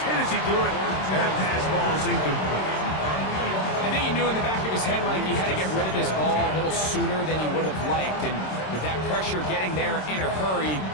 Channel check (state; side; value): late; right; 26 ms